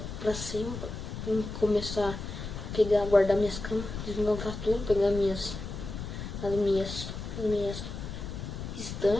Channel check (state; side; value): noise; left; rumble, 7 dB below the sound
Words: pra cima. Pra começar a pegar, guardar minhas camas. Desmontar tudo. Pegar as minhas